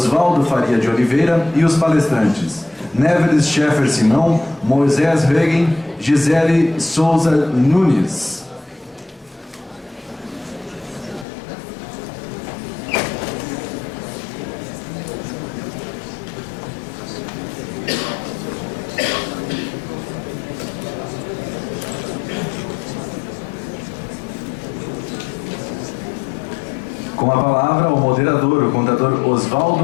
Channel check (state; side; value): drops out; right; at 11.2 s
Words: Faria de Oliveira, e os palestrantes Neveles Scheffer Simão, Moisés Regen, Gisele Souza Nunes. Com a palavra, o moderador, o contador